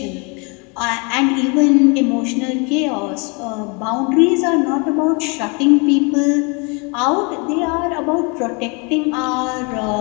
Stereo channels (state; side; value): quieter; right; 32.2 dB